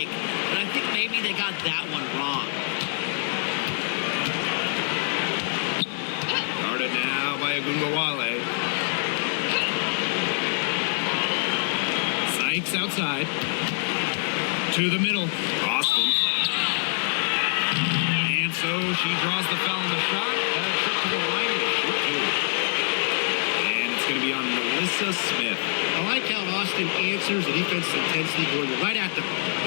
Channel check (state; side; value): silent; right; 62 dB below the other